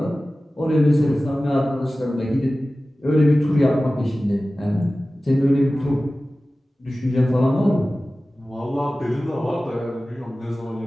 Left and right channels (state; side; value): normal; both; correlation 0.96